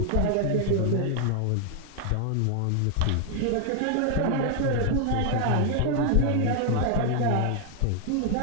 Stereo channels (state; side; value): different; both; correlation 0.00